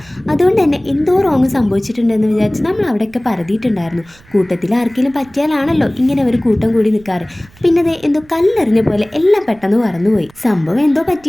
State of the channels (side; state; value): right; noise; rumble, 27 dB below the sound